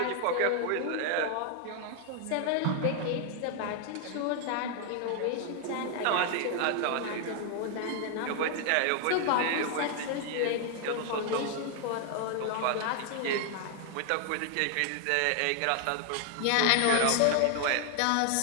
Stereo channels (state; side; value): different; both; correlation 0.00